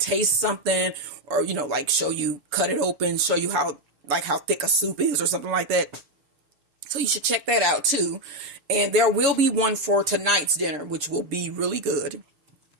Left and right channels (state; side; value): late; left; 7.1 ms